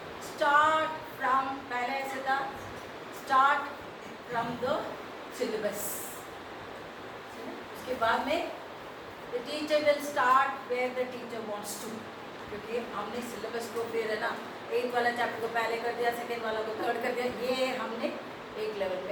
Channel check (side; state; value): both; identical; correlation 1.00